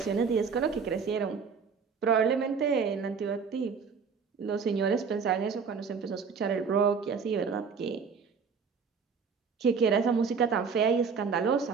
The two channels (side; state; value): left; quieter; 5.8 dB